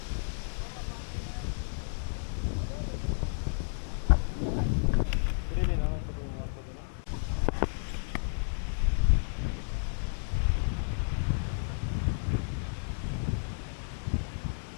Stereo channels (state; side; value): silent; right; digital silence